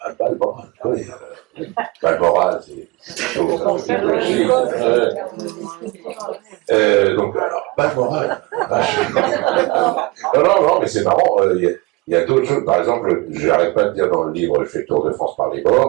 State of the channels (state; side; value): quieter; left; 24.5 dB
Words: bat le moral. oui, Balmoral, c'est plutôt idéologique. Donc, alors, Balmoral, non, mais c'est marrant, il y a d'autres choses, par exemple, je n'arrête pas de dire dans le livre, je fais le Tour de France par les